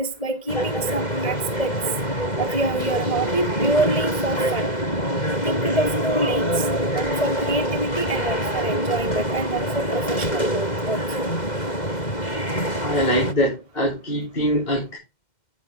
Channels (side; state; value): right; late; 2.1 ms